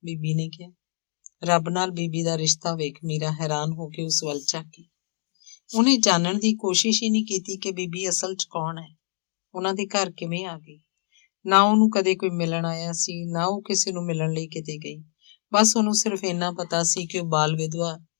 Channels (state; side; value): silent; right; digital silence